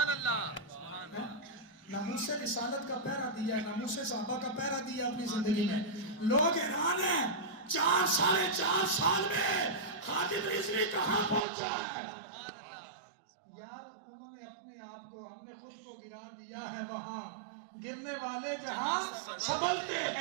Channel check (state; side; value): drops out; left; at 11.5 s